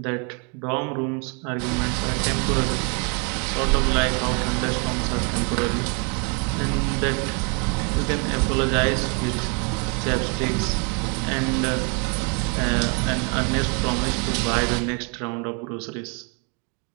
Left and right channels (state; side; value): quieter; left; 36.1 dB